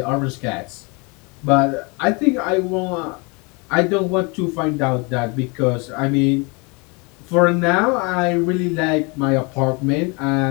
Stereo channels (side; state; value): right; quieter; 30.0 dB